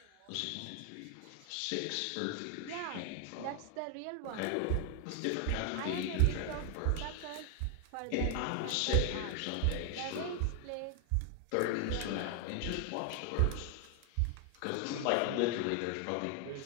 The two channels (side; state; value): both; different; correlation 0.01